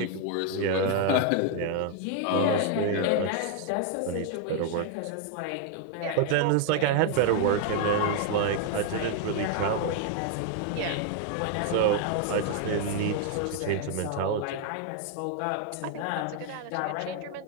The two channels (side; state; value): both; different; correlation 0.00